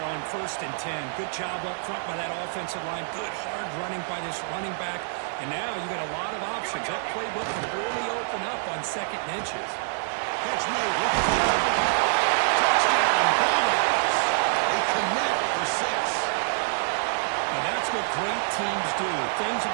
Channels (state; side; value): silent; left; 61 dB below the other